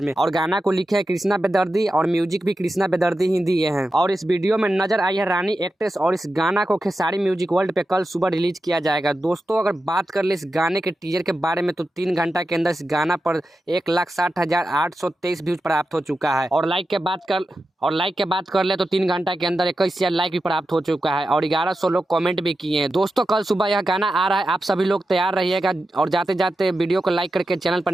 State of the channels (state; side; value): normal; both; correlation 0.91